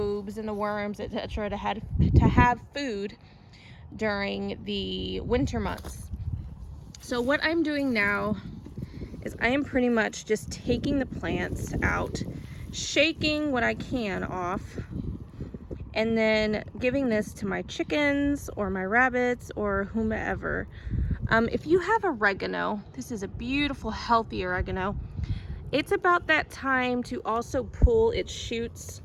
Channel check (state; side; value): identical; both; correlation 1.00